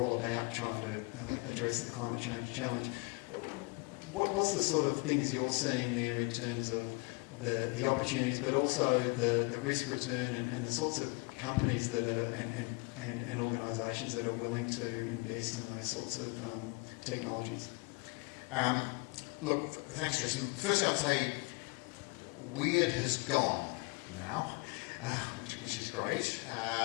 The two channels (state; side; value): quieter; right; 29.4 dB